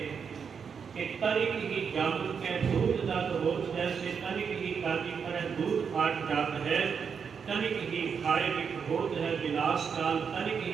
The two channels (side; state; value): left; quieter; 6.5 dB